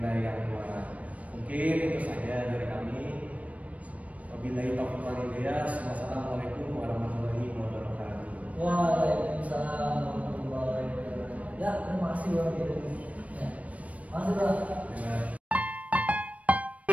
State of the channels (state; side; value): late; left; 0.067 ms